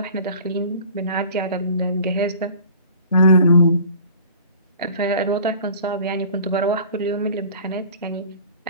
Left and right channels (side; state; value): both; inverted; correlation -0.46